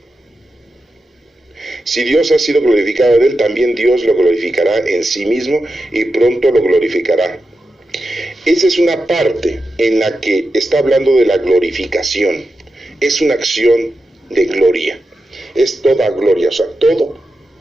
Si Dios ha sido glorificado en él, también Dios lo glorificará en sí mismo y pronto lo glorificará. Esa es una parte en la que está hablando de la glorificación. Es una acción de gloria. Es toda gloria, o sea, todo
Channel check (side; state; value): both; normal; correlation 0.90